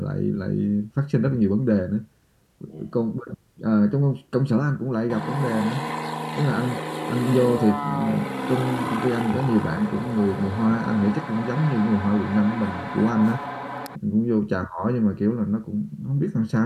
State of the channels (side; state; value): both; identical; correlation 1.00